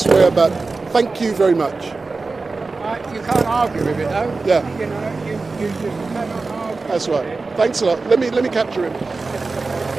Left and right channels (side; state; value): left; quieter; 3.9 dB